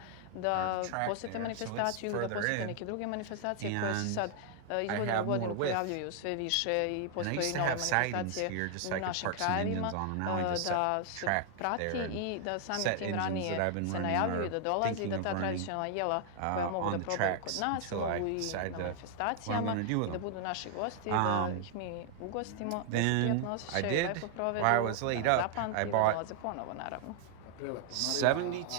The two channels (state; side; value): different; both; correlation 0.00